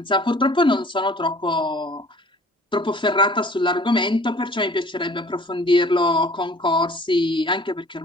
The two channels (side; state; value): both; normal; correlation 0.50